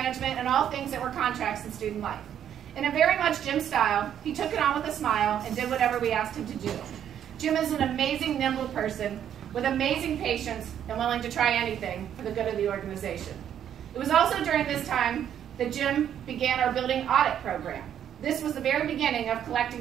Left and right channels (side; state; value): left; quieter; 9.8 dB